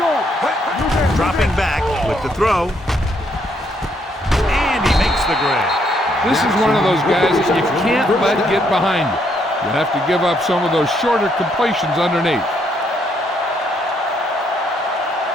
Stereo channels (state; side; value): normal; both; correlation 0.72